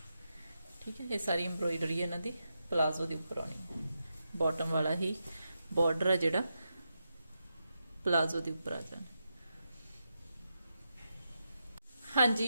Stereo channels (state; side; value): inverted; both; correlation -0.87